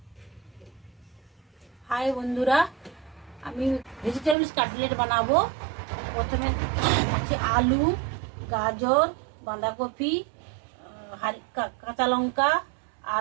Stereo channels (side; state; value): left; drops out; at 4.4 s